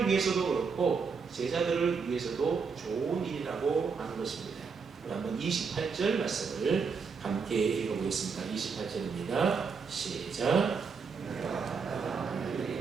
위해서도 그렇고 제자들을 위해서도 좋은 일이라고 하는 것입니다. 한번 28절 말씀을 함께 읽어보겠습니다. 28절입니다. 시작.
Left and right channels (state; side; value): quieter; left; 5.4 dB